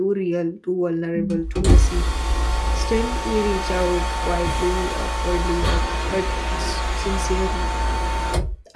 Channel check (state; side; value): identical; both; correlation 1.00